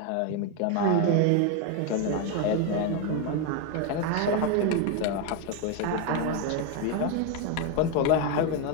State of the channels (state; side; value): different; both; correlation 0.01